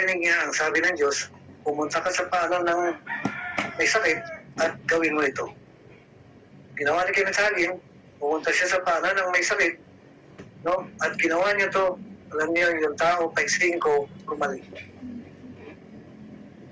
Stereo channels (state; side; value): identical; both; correlation 1.00